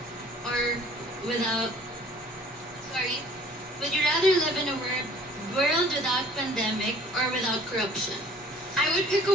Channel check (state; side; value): normal; both; correlation 0.53